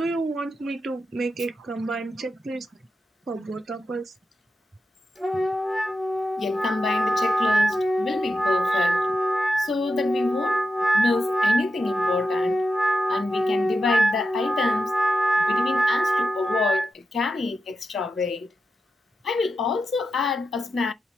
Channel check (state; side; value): normal; both; correlation 0.89